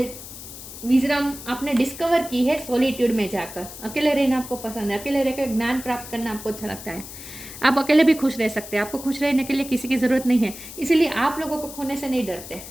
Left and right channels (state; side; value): noise; left; hiss, 13 dB below the sound